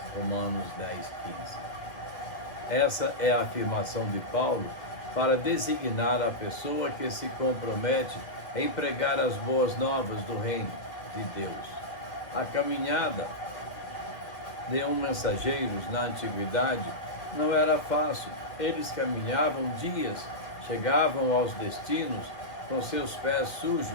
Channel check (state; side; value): late; right; 1.9 ms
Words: Romanos 10:15. Essa é a afirmação de Paulo para designar a pessoa que se compromete em pregar as boas novas do reino de Deus. A caminhada de mensageiros na antiguidade não era fácil. Eles caminhavam dias, chegavam aos destinos com seus pés